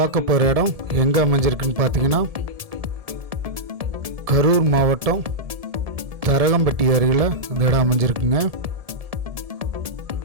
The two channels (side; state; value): left; late; 1.7 ms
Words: போகிற இடம் எங்கே அமைஞ்சிருக்குன்னு பார்த்தீங்கன்னா, கரூர் மாவட்டம் தரகம்பட்டி அருகில் இந்த இடம் அமைஞ்சிருக்குங்க.